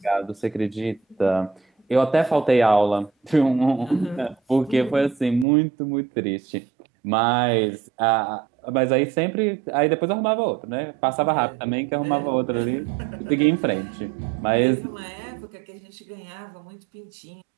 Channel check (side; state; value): left; drops out; at 5.5 s